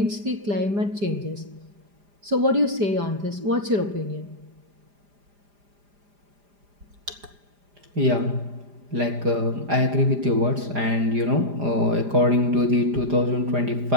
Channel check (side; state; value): left; late; 4.9 ms